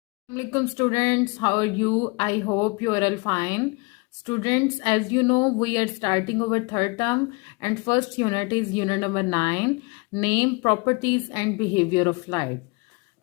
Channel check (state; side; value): quieter; right; 28.9 dB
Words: Assalamualaikum students, how are you? I hope you are all fine. Students, as you know, we are starting our third term and first unit is unit number 9, name, properties and behavior of light.